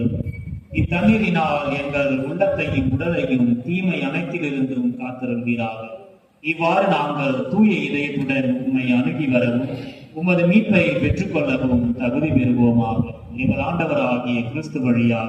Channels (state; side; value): identical; both; correlation 1.00